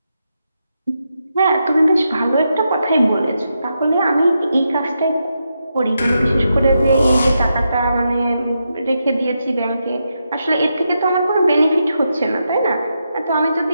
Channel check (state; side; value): inverted; both; correlation -0.85